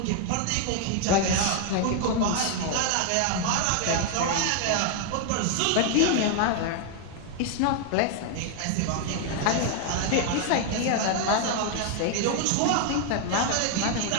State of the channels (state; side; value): different; both; correlation 0.00